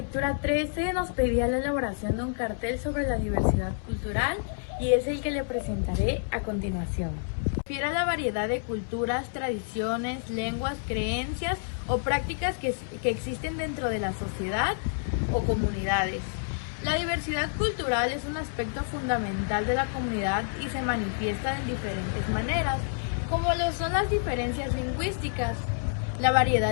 13 nos pedía la elaboración de un cartel sobre la diversidad cultural y es el que le presentaré a continuación. Refiere a la variedad de culturas, tradiciones, lenguas, creencias o prácticas que existen dentro de la sociedad o comunidades. La diversidad cultural es un aspecto fundamental de la comunidad y se manifiesta en diferentes maneras, como lo son las diferencias lingüísticas, la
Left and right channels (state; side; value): silent; right; 59 dB below the other